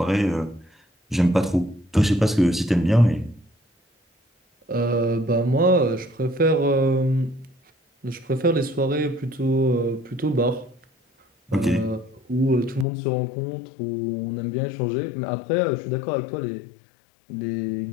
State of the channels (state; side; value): drops out; right; at 12.9 s